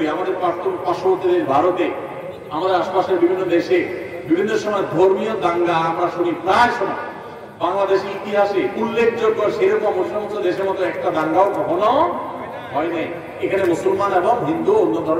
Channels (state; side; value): identical; both; correlation 1.00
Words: আমাদের পার্শ্ববর্তী দেশ ভারতে, আমাদের আশপাশের বিভিন্ন দেশে বিভিন্ন সময় ধর্মীয় দাঙ্গা আমরা শুনি প্রায় সময়। বাংলাদেশের ইতিহাসে উল্লেখযোগ্য সেরকম সমস্ত দেশের মতো একটা দাঙ্গাও কখনো হয় নাই। এখানে মুসলমান এবং হিন্দু অন্য